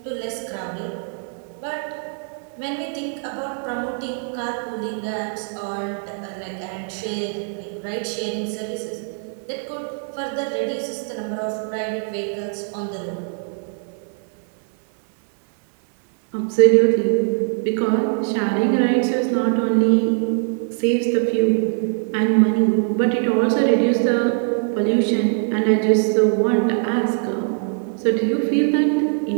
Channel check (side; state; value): left; silent; 56 dB below the other